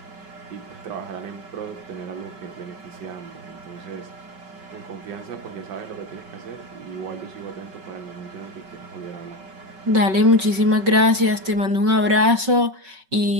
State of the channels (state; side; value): late; left; 5.3 ms